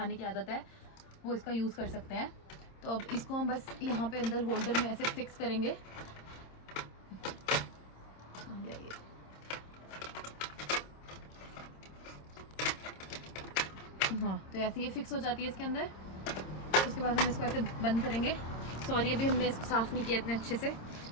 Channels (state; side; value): late; right; 26 ms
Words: की आदत है वो इसका यूज़ कर सकते हैं। तो अब इसको हम बस यहाँ पे अंदर होल्डर में ऐसे फिक्स करेंगे। हाँ, तो ऐसे ये फिक्स हो जाती है इसके अंदर। उसके बाद हम इसको ऐसे बंद करेंगे। सॉरी अभी हमने इसको साफ़ नहीं किया इतने अच्छे से।